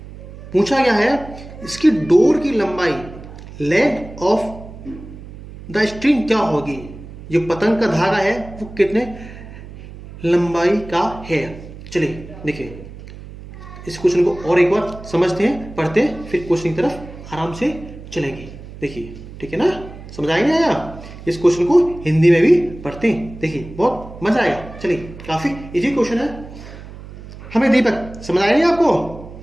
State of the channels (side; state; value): right; noise; hum, 15 dB below the sound